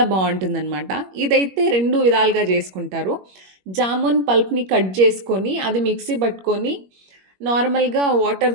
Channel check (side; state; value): left; late; 21 ms